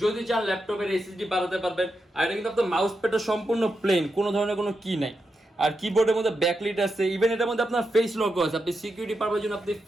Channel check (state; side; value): normal; both; correlation 0.86